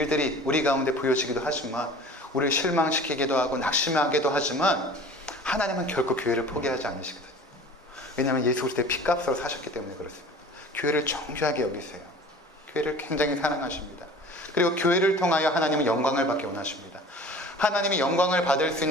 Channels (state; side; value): normal; both; correlation 0.43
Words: 우리 가운데 보여지기도 하지만, 우리를 실망시키기도 하고 낙심하기도 하지만, 하나님은 결코 교회를 포기하지 않으시거든요. 왜냐하면 예수 그리스도의 피값으로 사셨기 때문에 그렇습니다. 교회를 정죄하게 여기세요. 교회를 굉장히 사랑하십니다. 그리고 교회를 통하여 하나님은 영광을 받기 원하십니다. 하나님이 영광을 받을 수